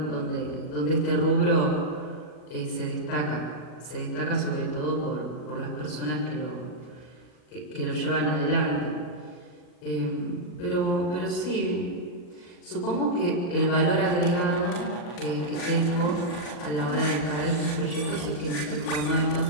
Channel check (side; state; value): right; late; 40 ms